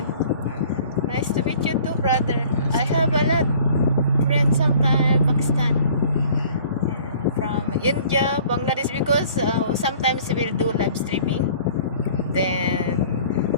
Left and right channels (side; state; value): both; inverted; correlation -0.51